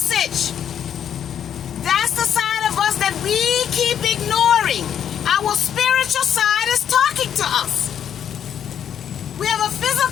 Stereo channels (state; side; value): quieter; right; 9.1 dB